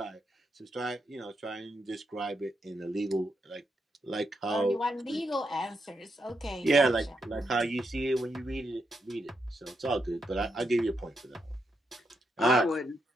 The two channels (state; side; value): normal; both; correlation 0.82